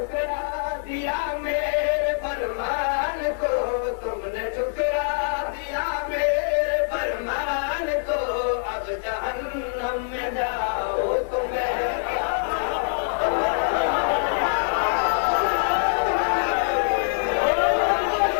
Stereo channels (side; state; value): right; silent; 62 dB below the other